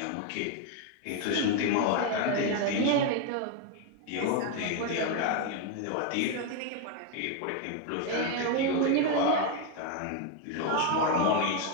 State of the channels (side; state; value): both; different; correlation 0.01